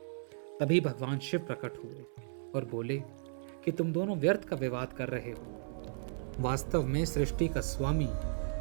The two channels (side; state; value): left; silent; 54 dB below the other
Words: तभी भगवान शिव प्रकट हुए और बोले कि तुम दोनों व्यर्थ का विवाद कर रहे हो। वास्तव में सृष्टि का स्वामी